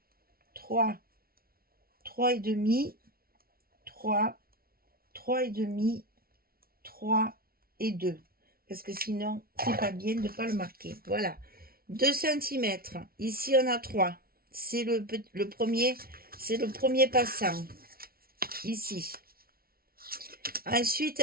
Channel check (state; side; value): late; left; 0.44 ms